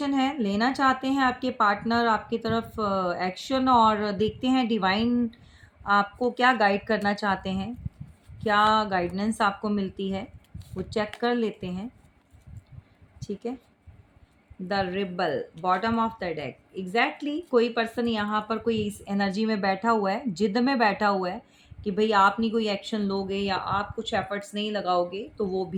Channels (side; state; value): both; identical; correlation 1.00